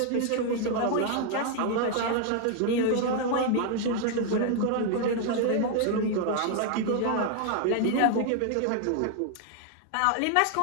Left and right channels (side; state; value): both; different; correlation 0.00